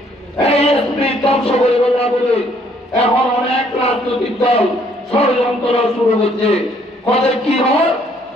এই স্পিরিট ধ্বংস করে বলা বলে এখন অনেক রাজনৈতিক দল ষড়যন্ত্র শুরু হচ্ছে। কবে কি হয়?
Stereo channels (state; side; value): normal; both; correlation 0.65